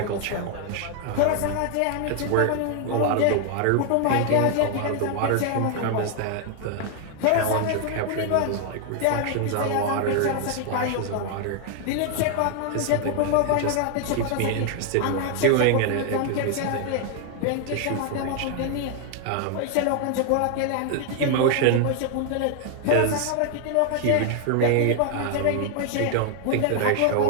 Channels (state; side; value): different; both; correlation 0.00